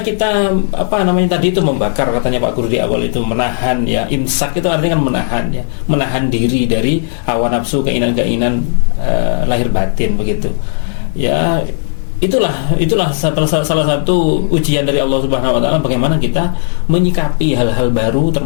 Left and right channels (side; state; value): right; silent; digital silence